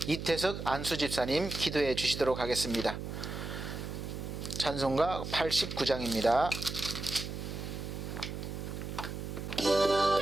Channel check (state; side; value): noise; right; hum, 6 dB below the sound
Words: 이태석 안수 집사님 기도해 주시도록 하겠습니다. 찬송가 89장입니다.